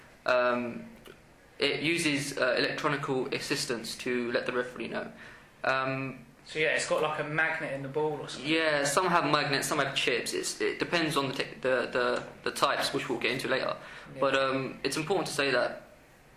It uses electronical assistance to let the referee know. So yeah, it's got like a magnet in the ball or something. Yeah, some have magnets, some have chips. It depends on the types, which we'll get into later. Yeah. But it's important to say that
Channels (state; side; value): identical; both; correlation 1.00